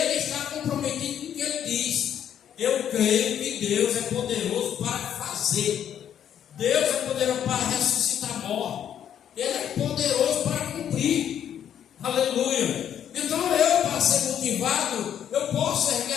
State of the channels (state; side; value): quieter; right; 9.6 dB